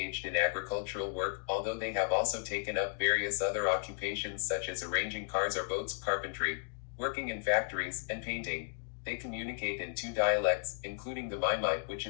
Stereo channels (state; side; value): silent; right; digital silence